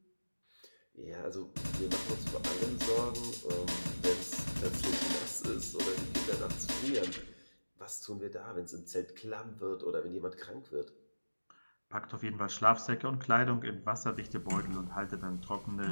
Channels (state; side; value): inverted; both; correlation -1.00